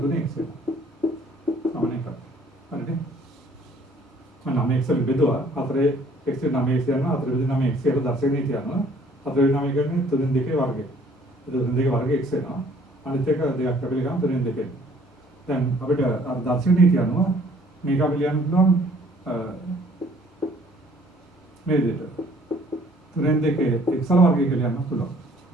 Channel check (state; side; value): normal; both; correlation 0.58